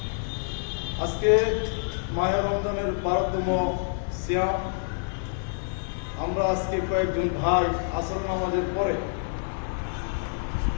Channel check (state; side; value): silent; right; 55 dB below the other